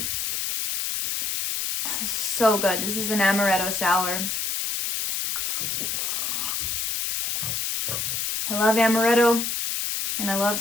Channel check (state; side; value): noise; left; hiss, 1 dB below the sound